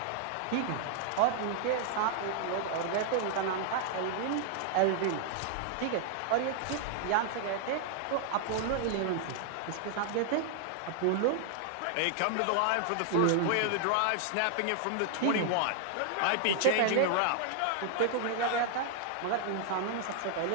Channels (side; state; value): both; different; correlation 0.00